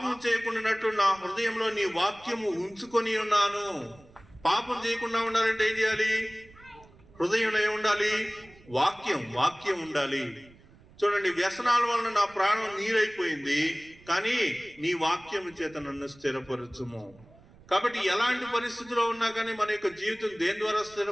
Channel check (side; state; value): right; noise; rumble, 25 dB below the sound